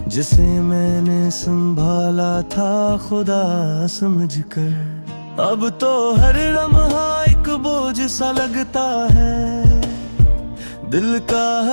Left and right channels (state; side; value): inverted; both; correlation -1.00